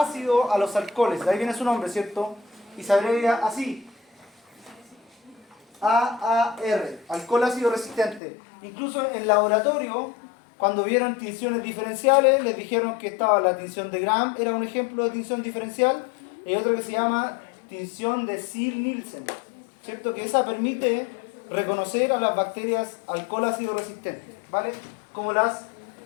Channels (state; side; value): drops out; right; at 8.2 s